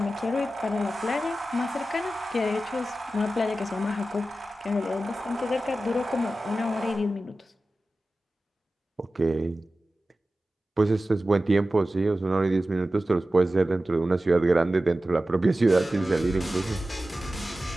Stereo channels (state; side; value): normal; both; correlation 0.94